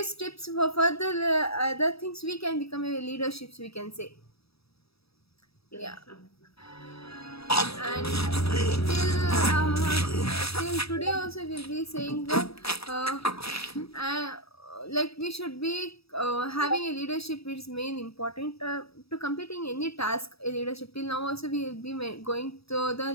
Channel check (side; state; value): right; late; 0.77 ms